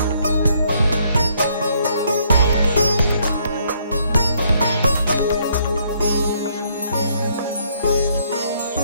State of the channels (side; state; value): both; inverted; correlation -0.68